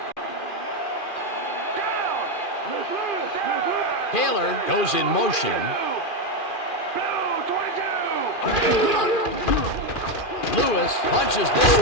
Taylor goes in motion. Lewis punches this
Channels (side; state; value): right; late; 2.4 ms